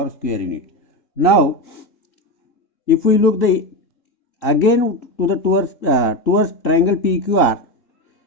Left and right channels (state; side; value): late; right; 3.7 ms